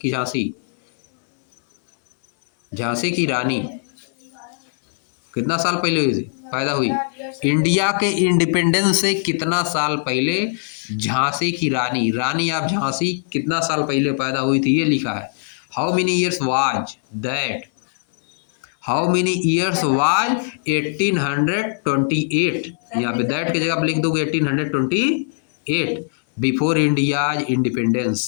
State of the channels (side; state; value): right; silent; 61 dB below the other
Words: झांसी की रानी, कितना साल पहले हुई थी पैदा हुई? इंडिया के इंडिपेंडेंस से कितना साल पहले झांसी की रानी आप झांसी कितना साल पहले पैदा हुई थी, ये लिखा है। How many years was that, how many years was 1828, यहाँ पे दैट की जगह आप लिख दोगे 1828 बिफोर इंडिया